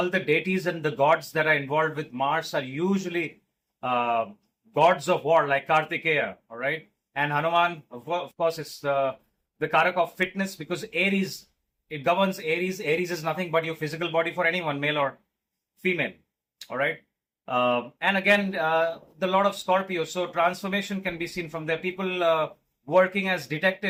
the deities and the gods that are involved with Mars are usually gods of war, like Kartikeya. All right. And Hanuman, of course, is the karak of fitness, because Aries, it governs Aries. Aries is nothing but your physical body for anyone, male or female. All right. And again, the Lord of Scorpio. So transformation can be seen from there. People working as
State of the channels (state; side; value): identical; both; correlation 1.00